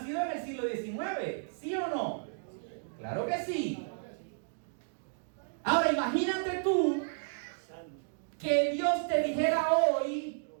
en el siglo XIX, ¿sí o no? Claro que sí. Ahora imagínate tú que Dios te dijera hoy,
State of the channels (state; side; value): silent; left; digital silence